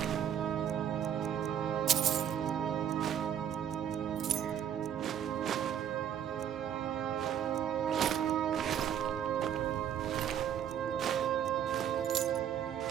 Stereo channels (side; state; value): left; quieter; 9.4 dB